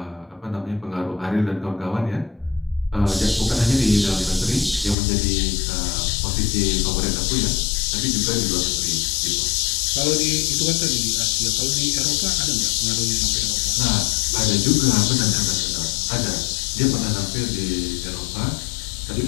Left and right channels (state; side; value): drops out; right; at 5.0 s